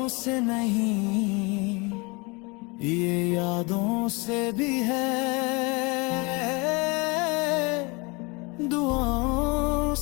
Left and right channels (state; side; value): quieter; right; 28.0 dB